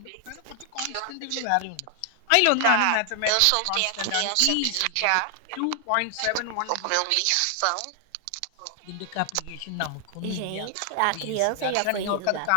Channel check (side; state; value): both; different; correlation 0.00